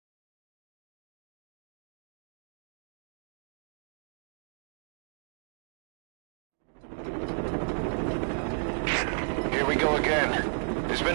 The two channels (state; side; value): silent; left; digital silence